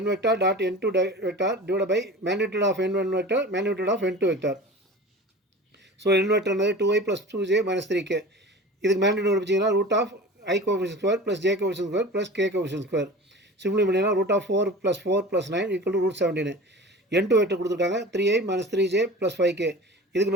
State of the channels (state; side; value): normal; both; correlation 0.36